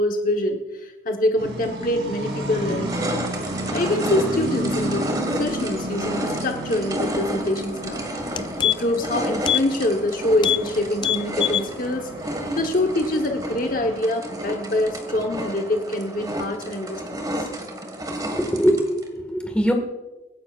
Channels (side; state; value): both; normal; correlation 0.56